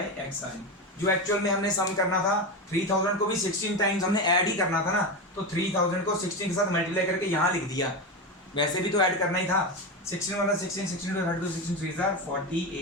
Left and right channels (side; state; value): both; normal; correlation 0.17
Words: एक्स आई, जो एक्चुअल में हमने सम करना था 3000 को भी 16 टाइम्स हमने ऐड ही करना था ना, तो 3000 को 16 के साथ मल्टीप्लाई करके यहाँ लिख दिया, वैसे भी तो ऐड करना ही था। 16 वाला 16, 16 to 32, 16 3